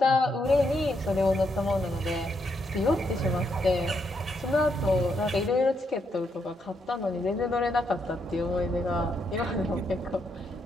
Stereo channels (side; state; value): both; normal; correlation 0.78